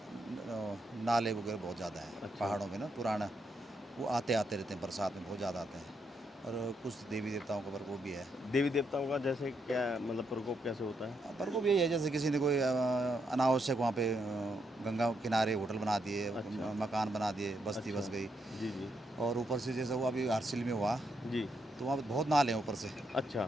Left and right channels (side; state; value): both; normal; correlation 0.79